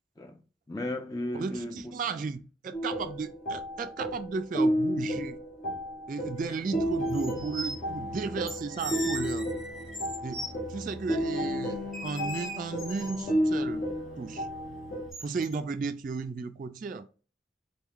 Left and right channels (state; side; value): normal; both; correlation 0.67